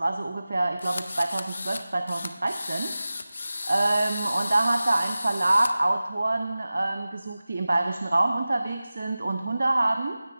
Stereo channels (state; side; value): inverted; both; correlation -0.97